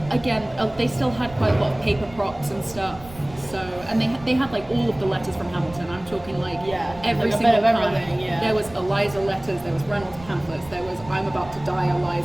But again, they still had quite a lot of paper props and stuff. So, and they had like all of the letters from Hamilton. I'm talking like every like a single bit of kind. everything, yeah. There was Eliza letters, there was Reynolds pamphlets, there was I'm about to die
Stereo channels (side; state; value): right; noise; rumble, 19 dB below the sound